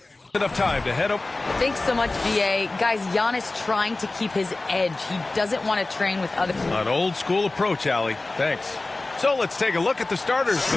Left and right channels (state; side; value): quieter; right; 3.1 dB